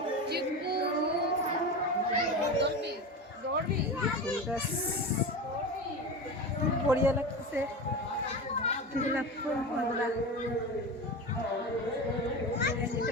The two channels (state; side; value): normal; both; correlation 0.25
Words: গাছ, বড়িয়া লাগতেছে। গোলাপ ফুল বন্ধুরা,